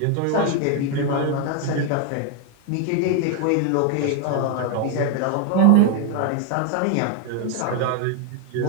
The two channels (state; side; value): different; both; correlation 0.01